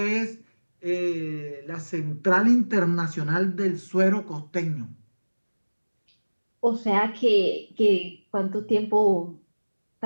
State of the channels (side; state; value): both; inverted; correlation -1.00